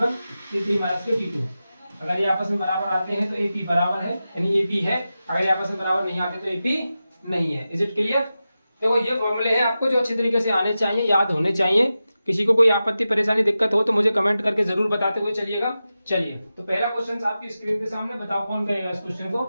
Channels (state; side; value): inverted; both; correlation -0.93